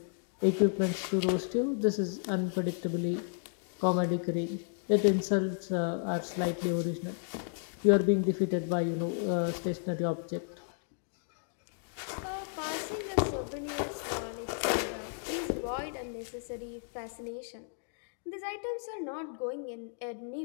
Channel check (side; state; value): right; silent; 56 dB below the other